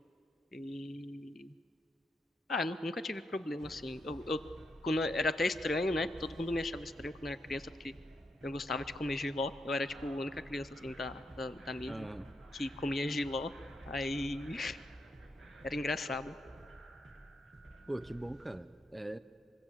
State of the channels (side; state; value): both; normal; correlation 0.81